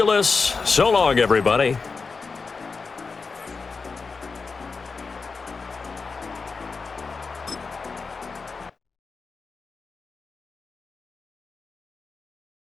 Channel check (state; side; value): quieter; right; 4.6 dB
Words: so long, everybody.